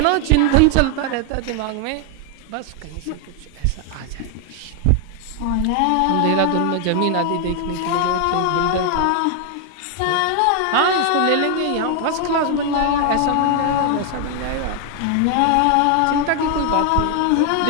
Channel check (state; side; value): different; both; correlation 0.00